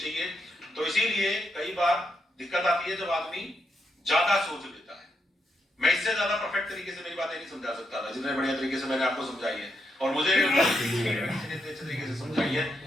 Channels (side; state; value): both; normal; correlation 0.81